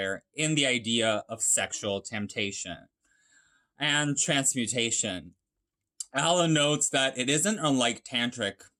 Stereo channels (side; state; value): both; identical; correlation 1.00